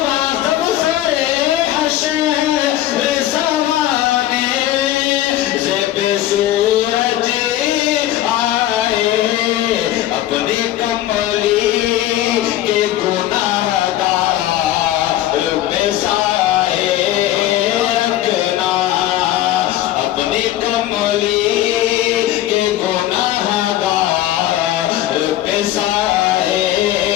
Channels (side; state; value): right; quieter; 13.6 dB